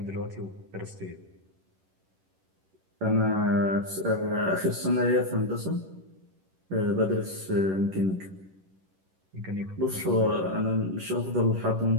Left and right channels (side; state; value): left; late; 11 ms